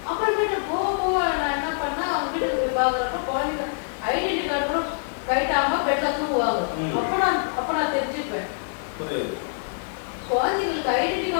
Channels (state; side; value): silent; right; 62 dB below the other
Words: அப்புறமேட்டு போக நான் என்ன பண்ணேன், அவங்க வீட்டுக்கு போய் பாக்குறப்ப குழந்தைங்க ஐடென்டி கார்டு கூட கைட்டாம பெட்ல தூங்குவாங்க. அப்ப நான் தெரிஞ்சுப்பேன் குழந்தைங்களுக்கு ஐடென்டி